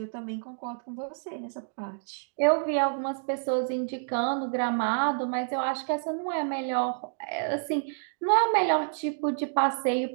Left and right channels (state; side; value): silent; left; digital silence